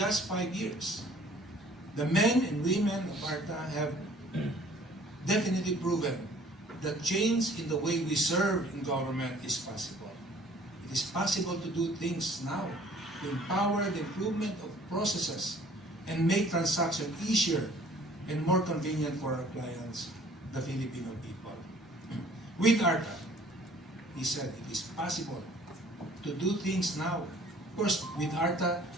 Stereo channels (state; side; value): normal; both; correlation 0.54